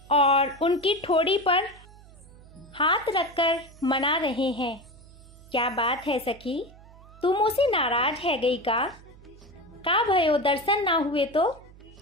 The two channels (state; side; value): noise; right; hum, 22 dB below the sound